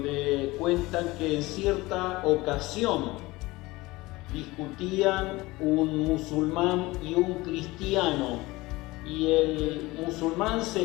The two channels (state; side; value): quieter; right; 20.7 dB